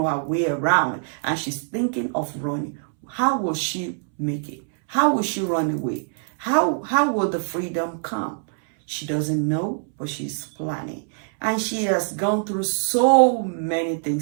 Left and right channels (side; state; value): left; silent; 63 dB below the other